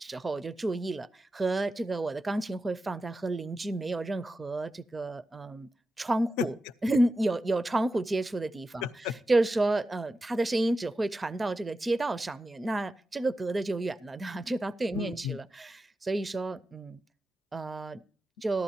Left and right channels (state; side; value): normal; both; correlation 0.91